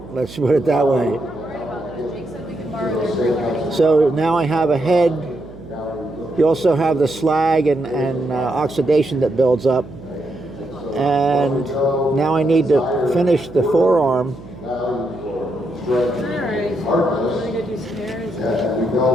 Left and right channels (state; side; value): noise; right; hum, 17 dB below the sound